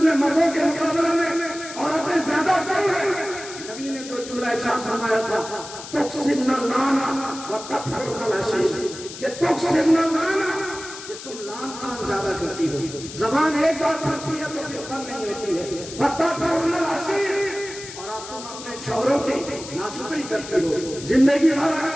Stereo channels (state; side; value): noise; left; hiss, 12 dB below the sound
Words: میں مردوں کے مقابلے میں عورتیں زیادہ کم ہیں؟ نبی نے تو جملہ ارشاد فرمایا تھا تکسبن اللانا وتکفرن العشیر، کہ تکسبن اللانا کہ تم لان تان زیادہ کرتی ہو، زبان ایک بار پھرتی ہے تو پھر بند نہیں ہوتی ہے، وتکفرن العشیر، تم اپنے شوہروں کی ناشکری کرتی ہو، زندگی بھر